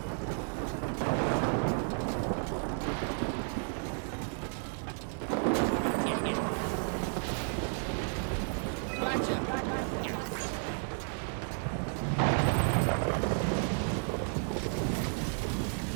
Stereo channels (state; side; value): silent; left; 55 dB below the other